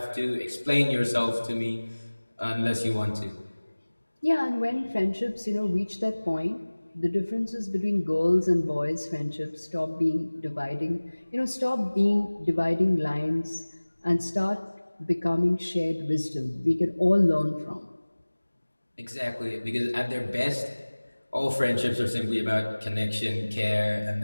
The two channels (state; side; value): inverted; both; correlation -1.00